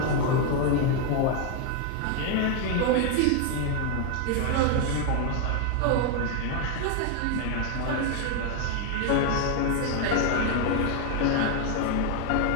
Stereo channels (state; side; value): different; both; correlation 0.01